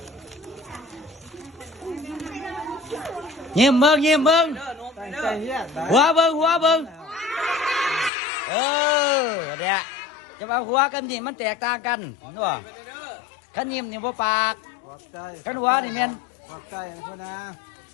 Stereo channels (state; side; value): drops out; right; at 8.1 s